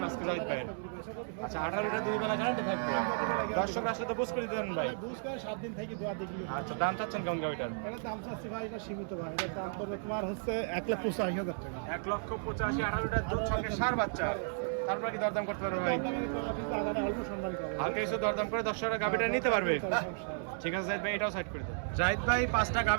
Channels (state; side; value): silent; left; digital silence